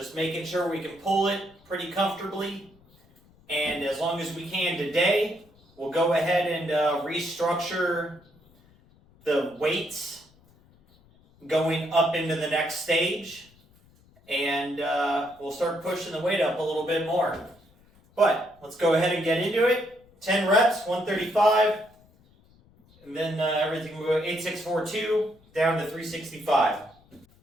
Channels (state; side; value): noise; left; rumble, 29 dB below the sound